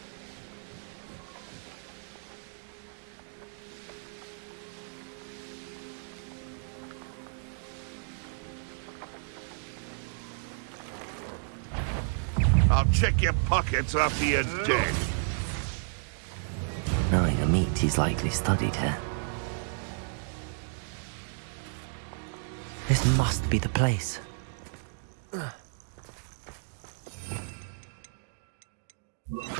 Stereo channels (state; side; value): silent; left; digital silence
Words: I'll check your pockets after you're dead. Knowing a meat he's likely studied here. This must be the place.